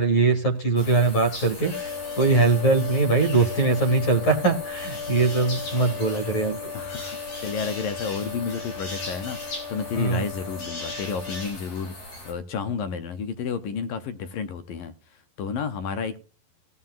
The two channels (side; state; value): right; late; 11 ms